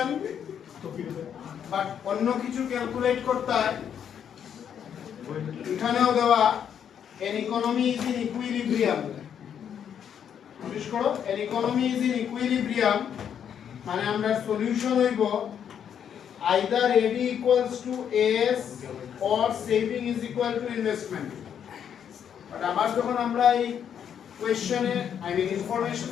but অন্য কিছু ক্যালকুলেট করতে হয় এখানেও দেওয়া an economy is in equilibrium notice করো an economy is in equilibrium মানে আমরা সলিউশন হইব either AD equals to AS or saving is equal to investment but আবার যখন আমরা এই কোশ্চেনে আই মিন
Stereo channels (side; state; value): right; quieter; 8.6 dB